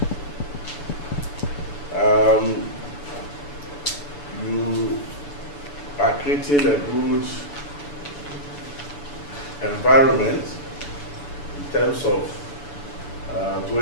you are creating a good environment in terms of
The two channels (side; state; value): right; late; 6.9 ms